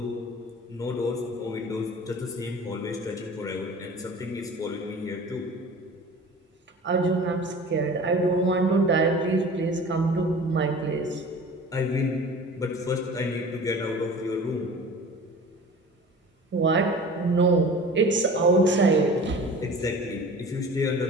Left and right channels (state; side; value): normal; both; correlation 0.40